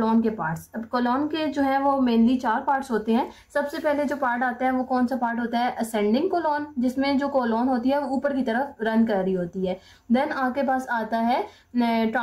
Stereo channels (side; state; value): both; identical; correlation 1.00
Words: के पार्ट्स। अब कोलोन के जो है वो मेनली 4 पार्ट्स होते हैं। सबसे पहले जो पार्ट आता है वो कौन सा पार्ट होता है, असेंडिंग कोलोन, जिसमें जो कोलोन होती है वो ऊपर की तरफ रन कर रही होती है। देन आपके पास आता है